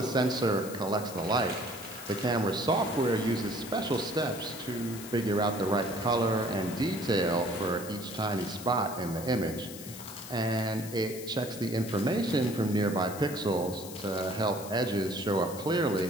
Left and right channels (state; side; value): noise; left; hiss, 13 dB below the sound